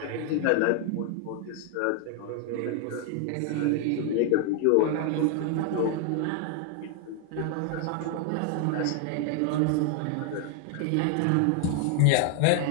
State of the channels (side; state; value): both; different; correlation 0.00